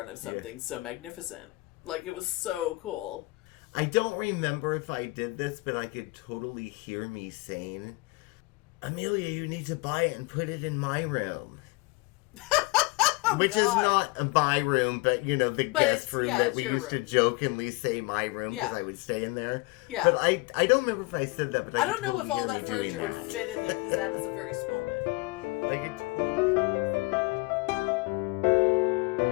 of something so magnificent. Like, it was so cool. I don't remember if I did this, but I could totally hear me saying, Amelia, you need to buy it and put it in my room. Which is not my room, but, the guest room that we used to jokingly say my room because I would stay in there. Yeah. But I don't remember if I said that. But I don't know if all that furniture would fit in there because that is a very small bed.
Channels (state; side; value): quieter; right; 24.0 dB